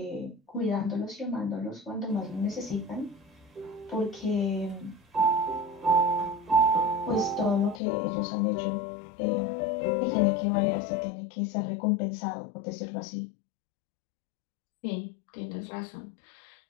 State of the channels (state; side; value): drops out; right; at 7.8 s